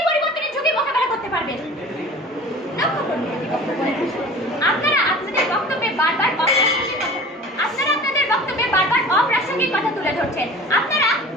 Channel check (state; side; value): normal; both; correlation 0.41